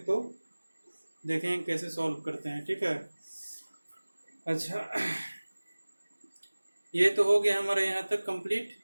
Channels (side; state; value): both; inverted; correlation -1.00